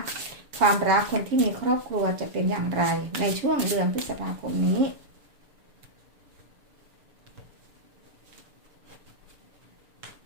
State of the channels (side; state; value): left; late; 6.8 ms